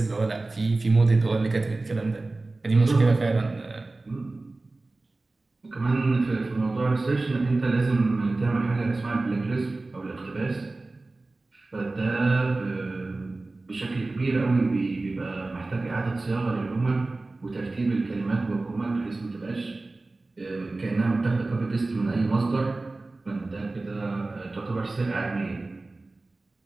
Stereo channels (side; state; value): left; quieter; 3.2 dB